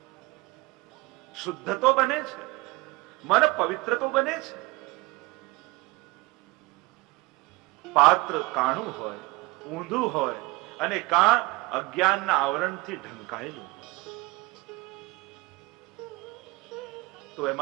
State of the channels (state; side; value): quieter; left; 22.4 dB